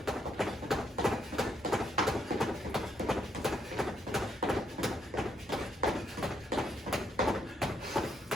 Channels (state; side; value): normal; both; correlation 0.75